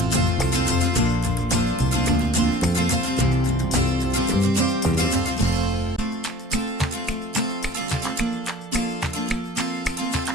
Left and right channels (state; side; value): normal; both; correlation 0.46